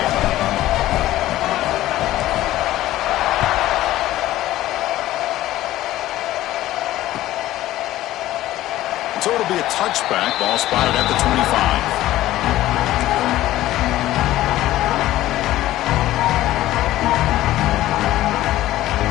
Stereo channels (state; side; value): quieter; right; 15.0 dB